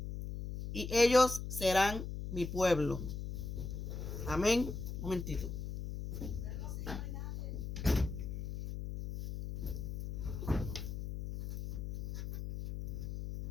y ellos serán mi pueblo. Amén. Un momentito.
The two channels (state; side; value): noise; left; hum, 6 dB below the sound